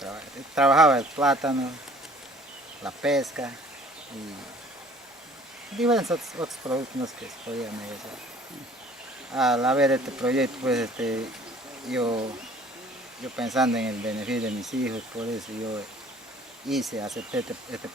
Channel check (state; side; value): normal; both; correlation 0.53